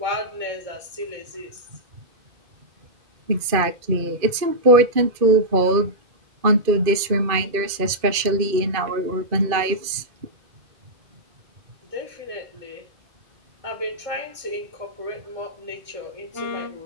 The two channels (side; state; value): left; late; 2.5 ms